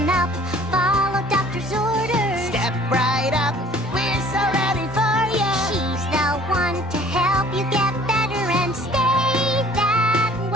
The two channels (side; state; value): both; normal; correlation 0.52